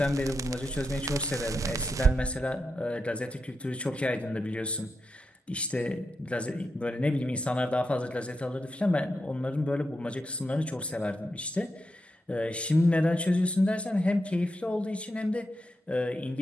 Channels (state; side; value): normal; both; correlation 0.86